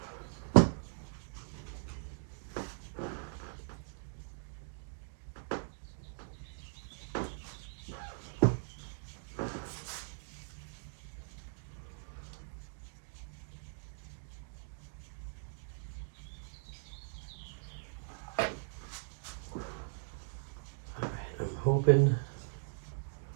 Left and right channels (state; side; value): silent; left; digital silence